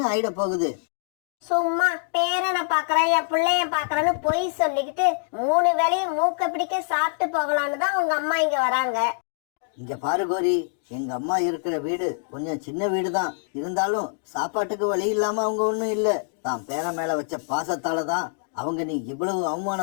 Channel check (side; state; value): right; silent; digital silence